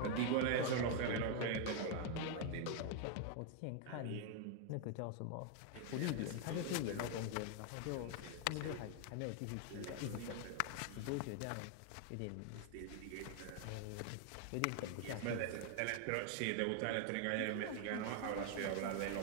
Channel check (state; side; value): different; both; correlation 0.00